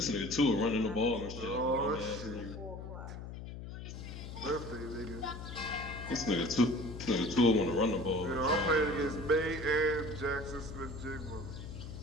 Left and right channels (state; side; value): noise; left; hum, 10 dB below the sound